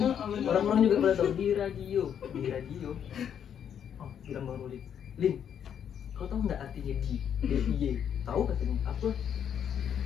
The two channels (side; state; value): right; quieter; 8.7 dB